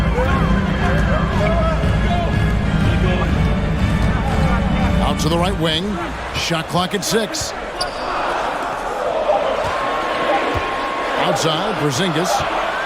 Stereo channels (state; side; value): identical; both; correlation 1.00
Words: Out to the right wing. Shot clock at 6. Outside, Porzingis.